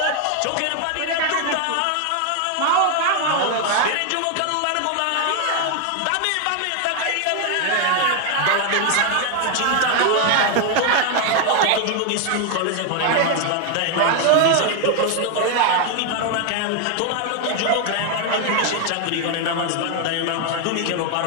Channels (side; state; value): both; different; correlation 0.01